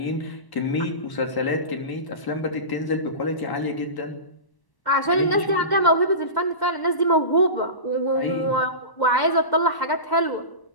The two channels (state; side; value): late; right; 1.0 ms